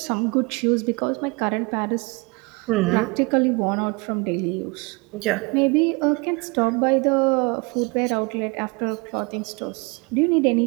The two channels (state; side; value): quieter; left; 28.2 dB